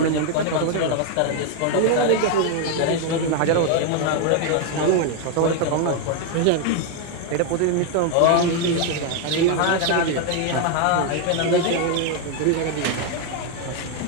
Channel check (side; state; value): both; different; correlation 0.01